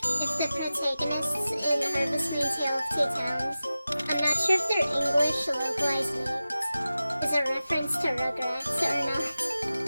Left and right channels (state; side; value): inverted; both; correlation -0.94